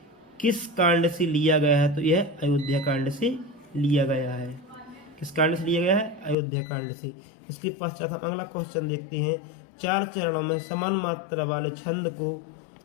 किस कांड से लिया गया है? तो यह अयोध्या कांड से लिया गया है। किस कांड से लिया गया है? अयोध्या कांड से। इसके पश्चात हम अगला क्वेश्चन देखते हैं। 4 चरणों में समान मात्रा वाले छंद को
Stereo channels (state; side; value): drops out; right; at 6.4 s